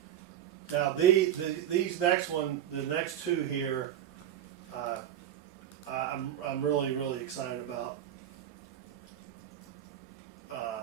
Now these the next two here, I'm really excited about.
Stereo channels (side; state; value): left; quieter; 10.9 dB